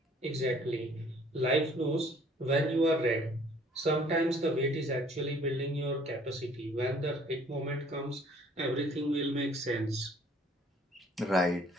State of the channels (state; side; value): normal; both; correlation 0.57